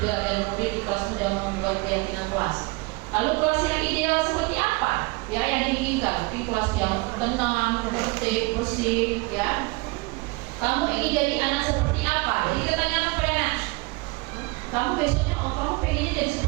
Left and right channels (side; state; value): left; quieter; 26.1 dB